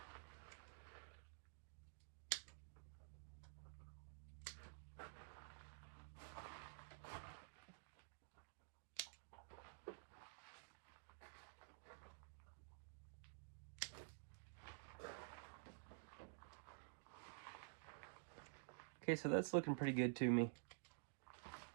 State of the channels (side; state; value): left; silent; digital silence